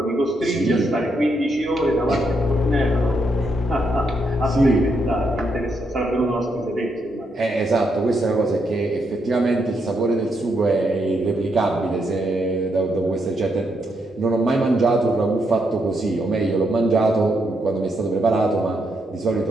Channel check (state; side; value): normal; both; correlation 0.79